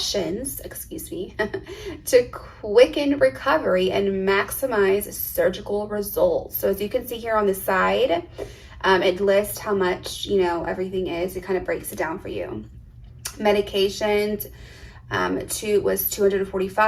to quicken recovery and maximize surgical results. So as you can see here on the side, it lists how much, everything is. It kind of breaks it down for you. Medications, was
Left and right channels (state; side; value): identical; both; correlation 1.00